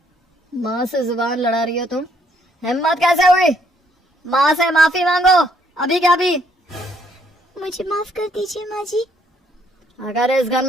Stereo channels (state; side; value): normal; both; correlation 0.68